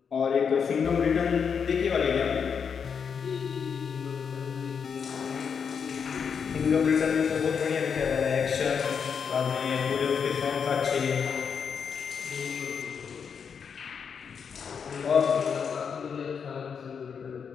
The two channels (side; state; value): right; quieter; 6.6 dB